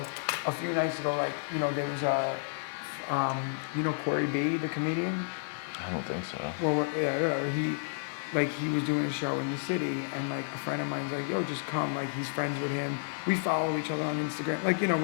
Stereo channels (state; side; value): silent; right; digital silence